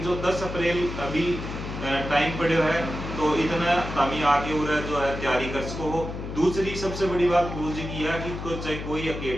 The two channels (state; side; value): noise; left; hum, 7 dB below the sound